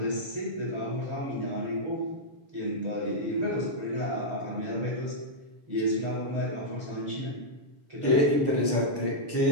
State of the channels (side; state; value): left; late; 6.6 ms